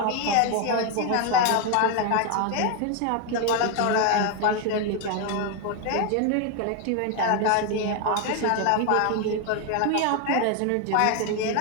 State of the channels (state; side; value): different; both; correlation 0.01